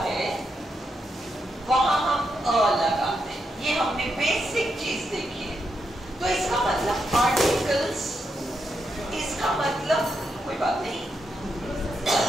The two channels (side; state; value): both; normal; correlation 0.83